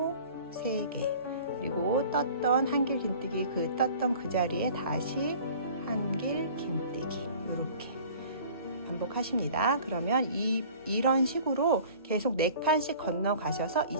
3개, 그리고 떴던 한길 긴뜨기, 그 떴던 그 자리에 다시 한길 긴뜨기. 이렇게 반복하십니다. 그러면 이런 식으로 계속 4칸씩 건너가셔서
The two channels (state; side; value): inverted; both; correlation -0.46